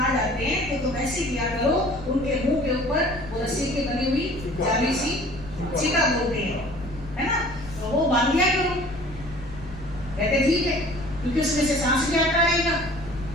जाते हैं तो तुम ऐसे किया करो, उनके मुंह के ऊपर वो रस्सी की बनी हुई जाली सी चिका बोलते हैं, है ना, तो वो बांध दिया करो। कहते ठीक है, क्योंकि उसमें से सांस भी आता रहेगा,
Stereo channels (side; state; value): left; noise; rumble, 14 dB below the sound